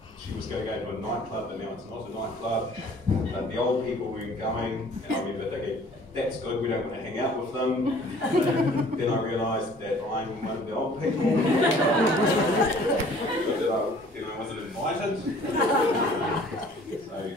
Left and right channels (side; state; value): both; normal; correlation 0.53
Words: she was going to go to a nightclub, but now it's not a nightclub. But the old people weren't going, and I remember thinking, that's good, we don't want to hang out with them. Then I realised that I'm one of the old people. Then I wasn't invited. So you